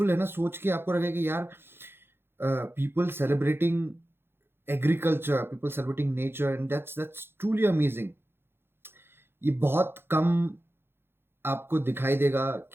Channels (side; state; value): left; late; 0.11 ms